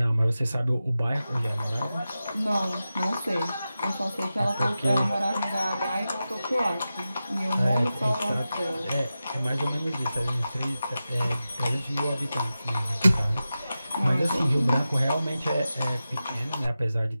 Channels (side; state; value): both; inverted; correlation -0.93